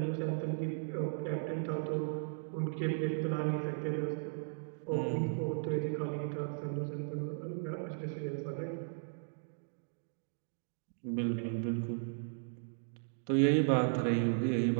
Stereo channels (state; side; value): silent; left; digital silence